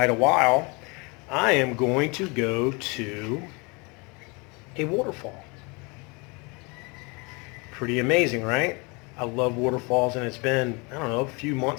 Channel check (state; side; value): quieter; right; 29.2 dB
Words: a while. I am going to go to a waterfall. Pretty amazing, right? I love waterfalls, and it's been, I don't know, a few